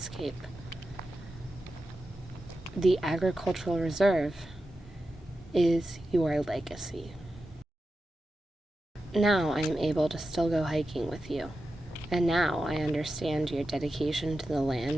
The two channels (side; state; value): both; normal; correlation 0.91